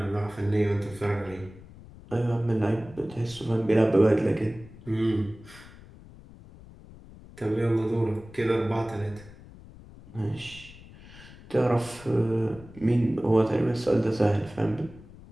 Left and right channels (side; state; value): left; noise; rumble, 19 dB below the sound